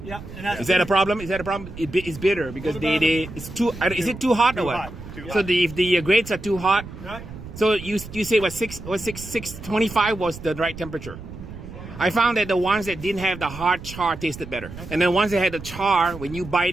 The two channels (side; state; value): right; noise; rumble, 13 dB below the sound